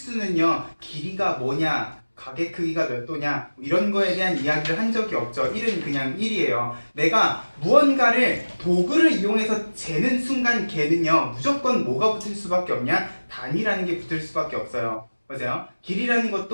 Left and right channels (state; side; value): inverted; both; correlation -1.00